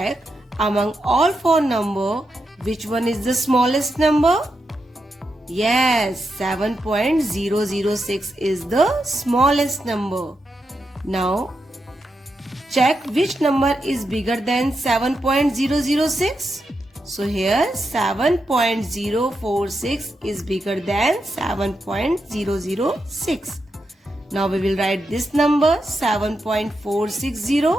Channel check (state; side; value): normal; both; correlation 0.85